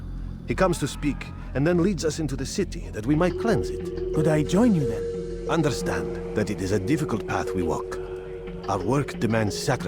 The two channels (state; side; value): identical; both; correlation 1.00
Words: He comes to speak, and then leads us into the city, that we might cleanse it. Could I join you then? Understand that it is a difficult path we walk. Our work demands